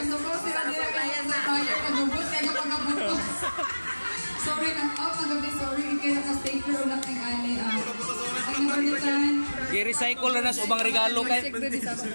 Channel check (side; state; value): both; inverted; correlation -1.00